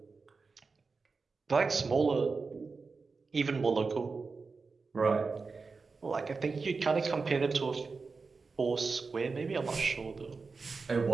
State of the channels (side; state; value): left; quieter; 4.4 dB